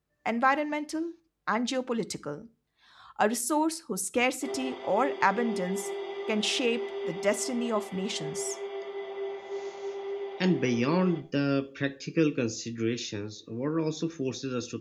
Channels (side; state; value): both; identical; correlation 1.00